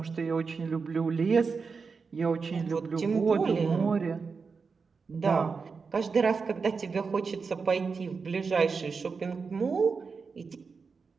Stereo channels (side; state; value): left; quieter; 5.0 dB